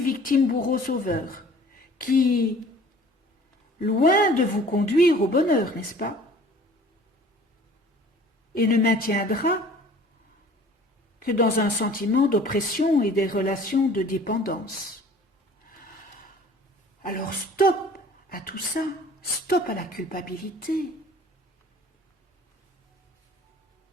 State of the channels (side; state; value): both; normal; correlation 0.49